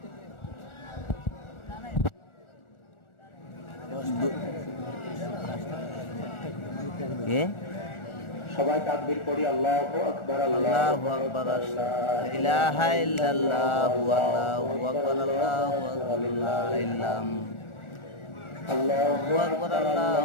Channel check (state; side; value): late; right; 1.4 ms